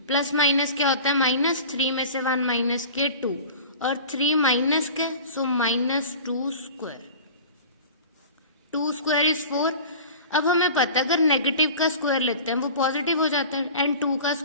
plus minus क्या होता है minus, 3 में से 1 माइनस के 2 और 3 माइनस के, so minus 2 square. 2 square is 4. अब हमें पता है अगर नेगेटिव का स्क्वायर लेते हैं वो पॉजिटिव हो जाता है एंड 2 का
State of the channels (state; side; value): inverted; both; correlation -0.38